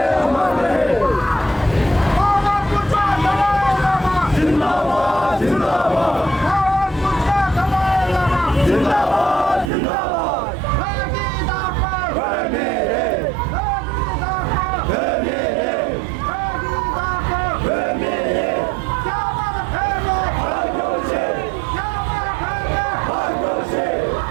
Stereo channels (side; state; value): left; drops out; at 9.7 s